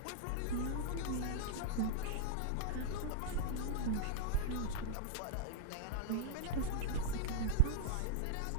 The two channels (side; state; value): both; different; correlation -0.01